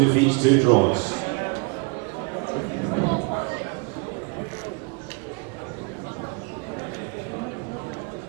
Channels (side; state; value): left; quieter; 31.4 dB